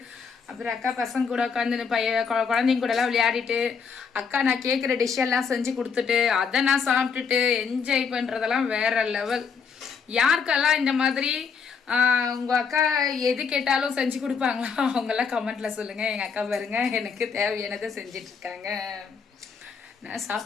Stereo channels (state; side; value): quieter; right; 6.0 dB